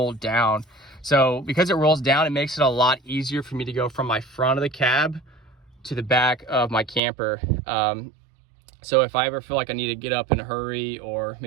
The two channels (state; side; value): drops out; left; at 7.0 s